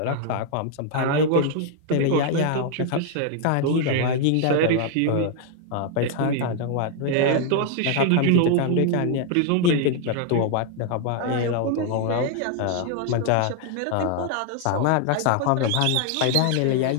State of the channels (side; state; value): both; different; correlation 0.00